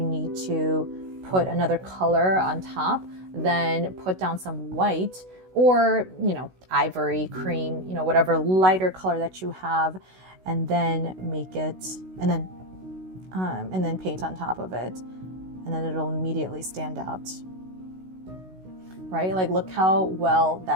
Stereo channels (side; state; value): left; late; 16 ms